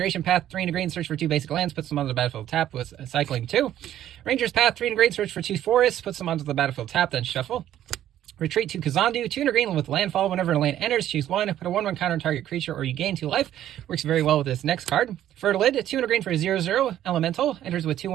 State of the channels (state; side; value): quieter; left; 11.9 dB